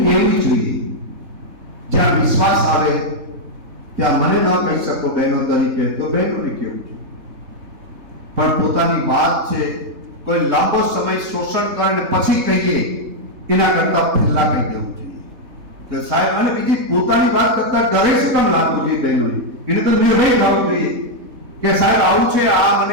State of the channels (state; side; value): late; left; 3.7 ms